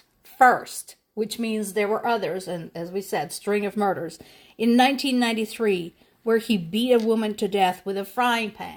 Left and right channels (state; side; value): identical; both; correlation 1.00